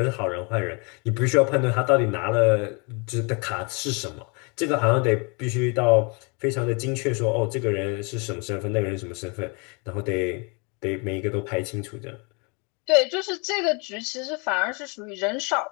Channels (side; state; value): right; quieter; 32.5 dB